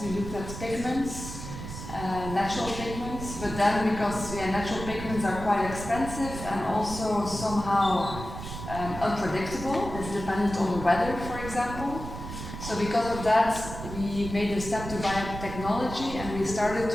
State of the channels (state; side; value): noise; right; rumble, 9 dB below the sound